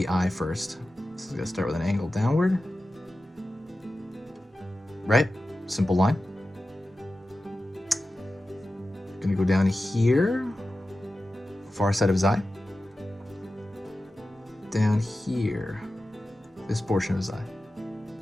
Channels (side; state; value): both; normal; correlation 0.93